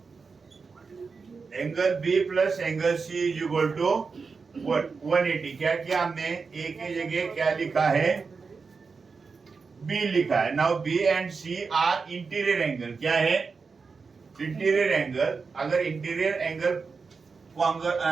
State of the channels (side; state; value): left; quieter; 4.9 dB